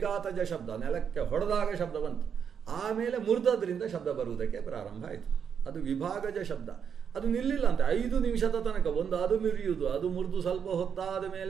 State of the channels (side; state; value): left; quieter; 7.4 dB